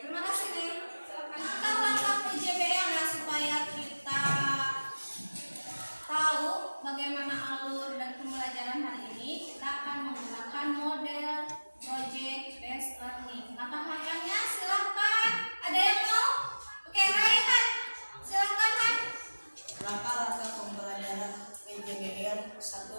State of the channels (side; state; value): both; inverted; correlation -1.00